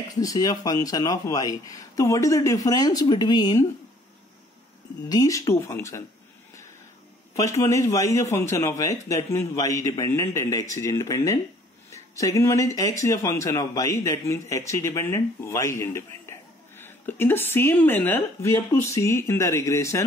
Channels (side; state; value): both; normal; correlation 0.58